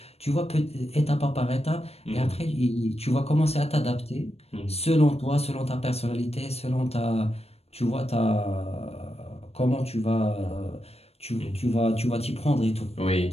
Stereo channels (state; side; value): late; right; 0.30 ms